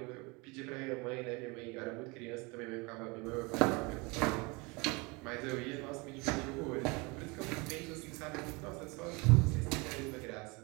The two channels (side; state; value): left; quieter; 27.3 dB